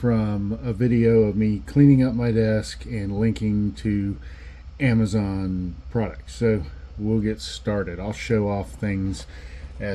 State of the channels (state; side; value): identical; both; correlation 1.00